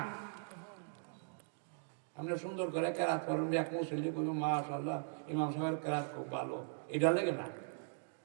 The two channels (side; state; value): left; silent; digital silence